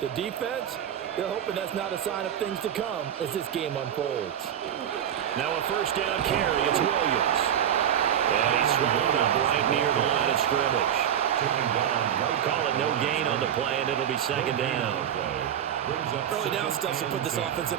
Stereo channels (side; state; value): left; quieter; 9.7 dB